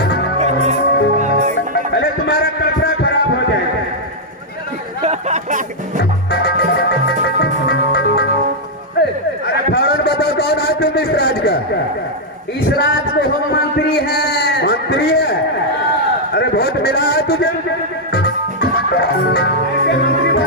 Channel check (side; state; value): both; normal; correlation -0.04